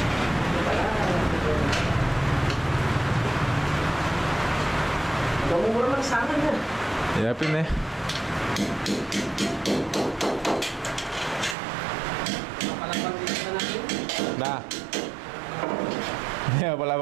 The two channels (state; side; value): drops out; left; at 11.6 s